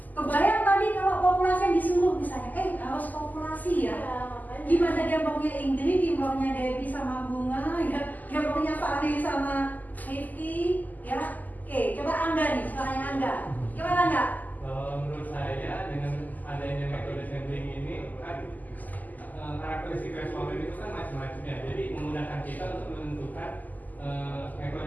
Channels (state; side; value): late; right; 0.082 ms